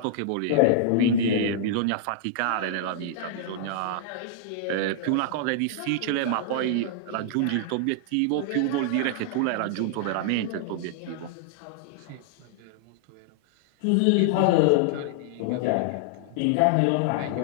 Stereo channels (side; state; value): both; different; correlation -0.01